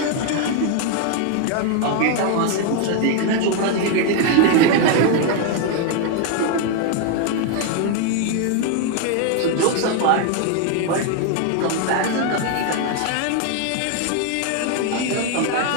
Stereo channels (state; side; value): different; both; correlation 0.00